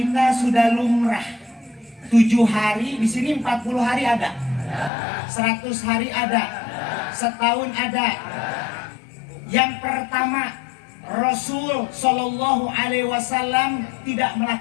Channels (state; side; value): drops out; right; at 4.9 s